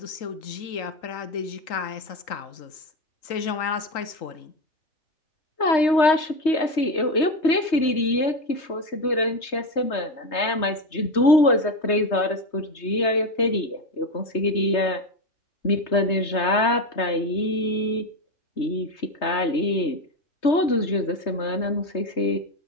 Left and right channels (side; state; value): right; late; 3.2 ms